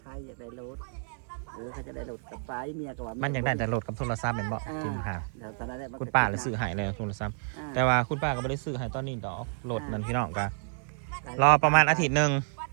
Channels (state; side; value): silent; left; digital silence